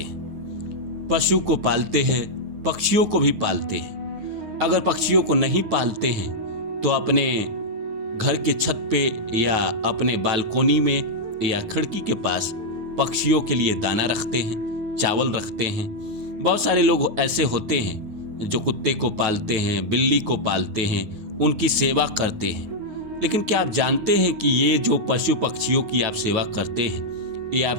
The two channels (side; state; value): left; late; 9.6 ms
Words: हैं। पशु को पालते हैं, पक्षियों को भी पालते हैं। अगर पक्षियों को नहीं पालते हैं तो अपने घर के छत पे या अपने बालकोनी में या खिड़की के पास पक्षियों के लिए दाना रखते हैं, चावल रखते हैं। बहुत सारे लोग ऐसे होते हैं जो कुत्ते को पालते हैं, बिल्ली को पालते हैं, उनकी सेवा करते हैं। लेकिन क्या आप जानते हैं कि ये जो पशु पक्षियों की आप सेवा करते हैं, ये